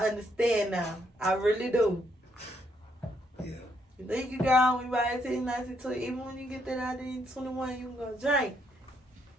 now. I really do. Yeah. You think you grown when you about 18, 19, 20. Even when you get that idea 21, you can go drink.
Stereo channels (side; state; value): both; normal; correlation 0.74